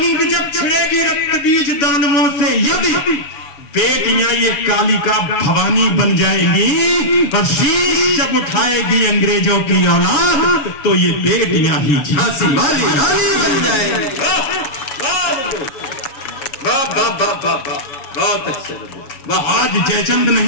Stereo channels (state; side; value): late; right; 7.1 ms